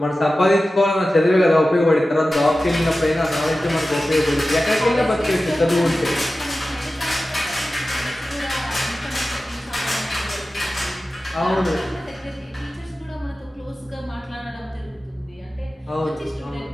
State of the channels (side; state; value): both; normal; correlation 0.95